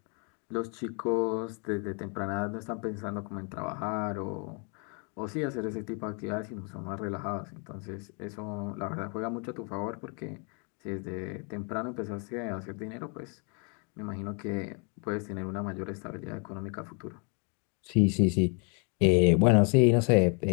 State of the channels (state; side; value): quieter; right; 36.9 dB